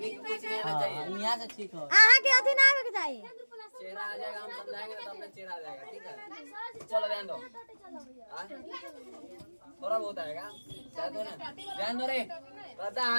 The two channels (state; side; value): inverted; both; correlation -1.00